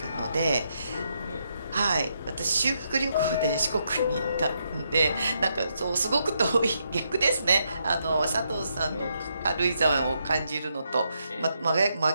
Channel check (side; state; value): both; inverted; correlation -0.79